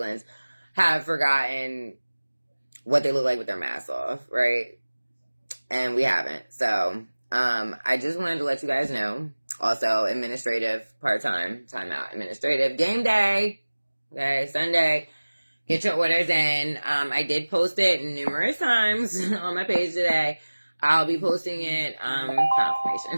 have forgotten what they look like with their masks off, right? And we haven't. So, I just wanted to let you guys know. Also, administrative, part-time, timeout, administrative, game day, okay, Sunday, get your orders in. I did post it numerous times on my page today. I'll be posting it,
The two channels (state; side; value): inverted; both; correlation -1.00